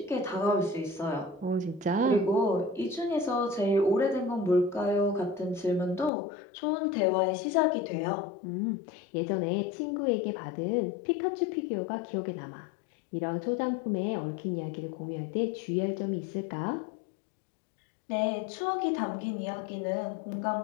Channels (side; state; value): right; drops out; at 6.1 s